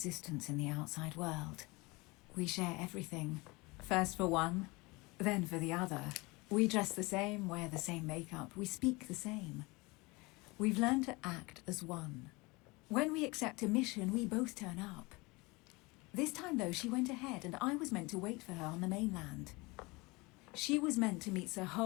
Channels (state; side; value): quieter; right; 24.8 dB